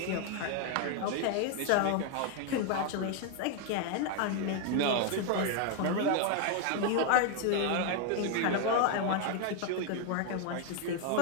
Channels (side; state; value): both; different; correlation 0.00